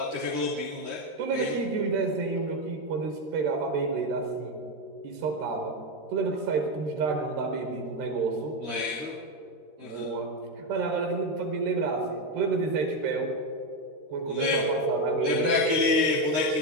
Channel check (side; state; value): left; late; 13 ms